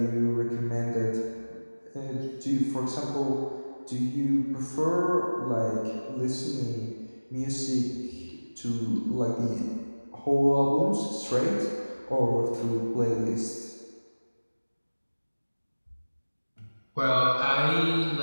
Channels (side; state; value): both; inverted; correlation -1.00